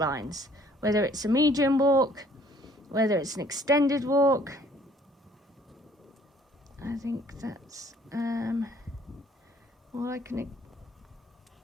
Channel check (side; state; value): both; normal; correlation 0.59